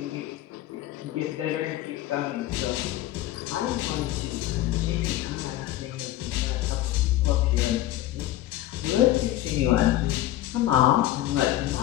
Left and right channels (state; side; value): quieter; right; 14.5 dB